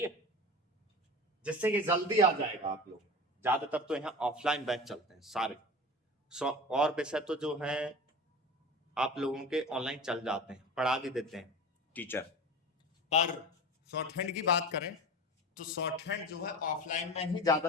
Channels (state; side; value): normal; both; correlation 0.32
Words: जिससे कि जल्दी आ जाएगा आप लोग। ज्यादातर तो यहाँ ऑफलाइन बैच चलते हैं सारे, और विषय तो जो है आप लोगों के ऑनलाइन चल जाते हैं, पढ़ा भी देते हैं टीचर। पर शॉर्ट हैंड की बात करें तो शॉर्ट हैंड जो है ऑफलाइन में ही